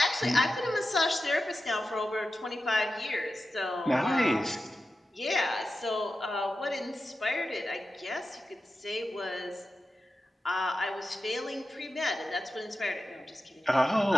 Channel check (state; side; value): normal; both; correlation 0.92